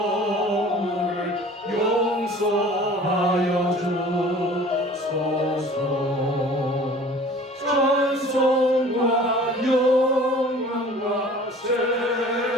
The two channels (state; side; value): normal; both; correlation 0.46